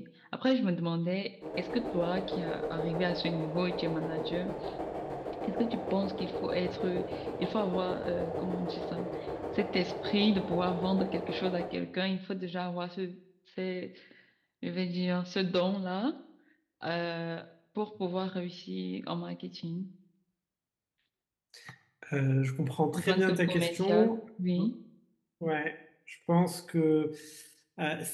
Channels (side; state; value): both; identical; correlation 1.00